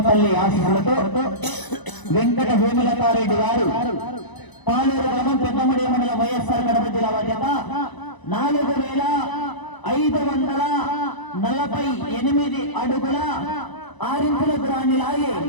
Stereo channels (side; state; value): right; late; 1.0 ms